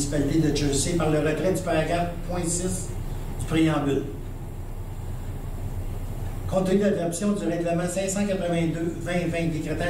de Jersey par le retrait du paragraphe .6 du préambule. Compte tenu de l'adoption du règlement 582-2020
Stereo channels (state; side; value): identical; both; correlation 1.00